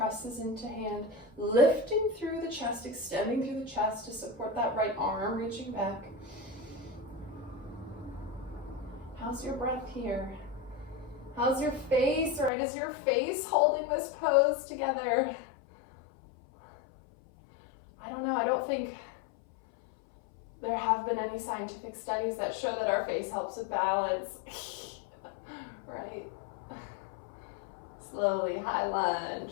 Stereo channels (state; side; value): drops out; right; at 12.5 s